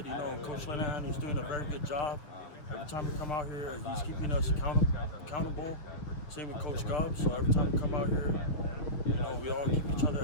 you know, Coach Lanahan, he's doing a very good job. Every time we come out here, he's keeping us accountable. Same with Coach Gubb. So every time we come out here, you know, we all keep each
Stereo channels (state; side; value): late; right; 6.5 ms